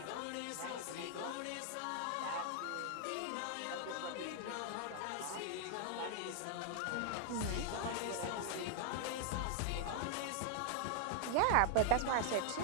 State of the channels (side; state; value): both; different; correlation 0.00